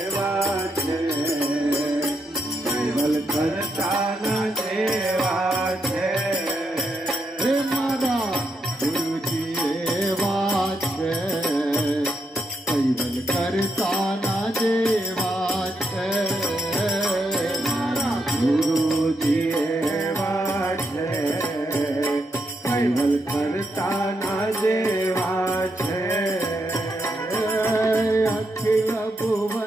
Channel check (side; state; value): both; normal; correlation 0.81